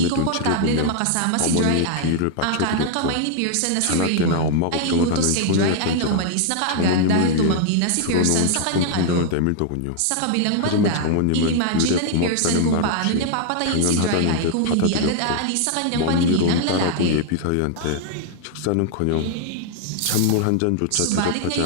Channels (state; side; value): different; both; correlation -0.01